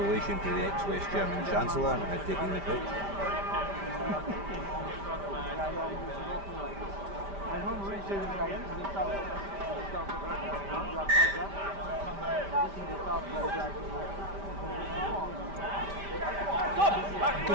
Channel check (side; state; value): left; late; 5.1 ms